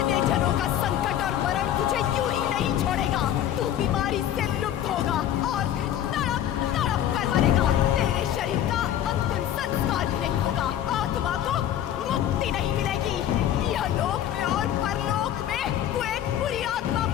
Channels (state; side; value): quieter; right; 11.1 dB